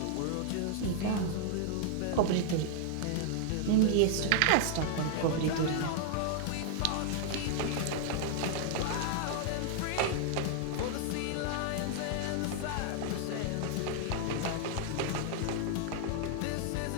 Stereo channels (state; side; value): different; both; correlation -0.01